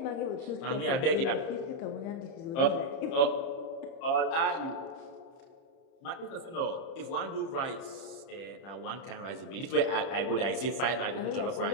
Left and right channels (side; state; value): right; late; 30 ms